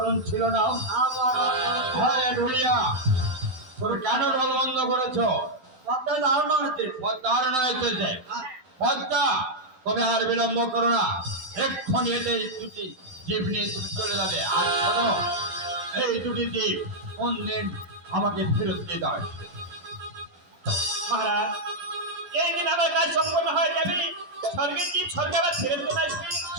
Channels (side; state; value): left; late; 12 ms